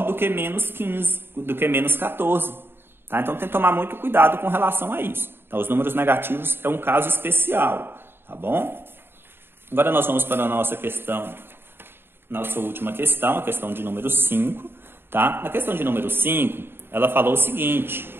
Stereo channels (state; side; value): late; left; 0.11 ms